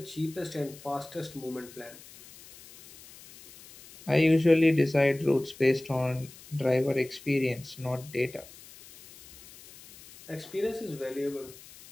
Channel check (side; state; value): left; noise; hiss, 20 dB below the sound